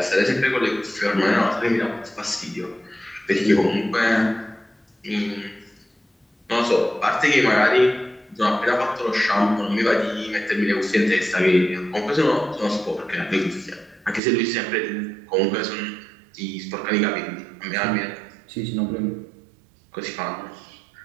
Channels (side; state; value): left; drops out; at 14.2 s